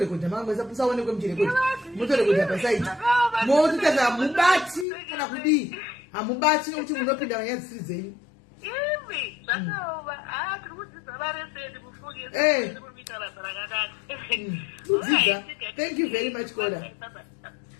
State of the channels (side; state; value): right; drops out; at 4.9 s